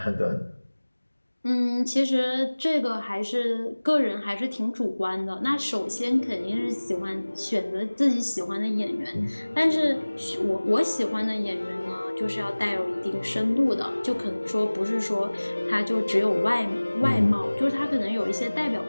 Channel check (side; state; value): both; inverted; correlation -1.00